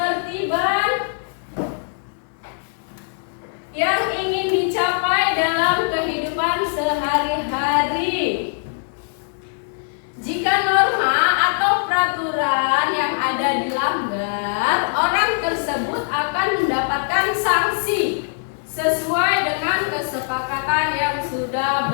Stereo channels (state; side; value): silent; right; 65 dB below the other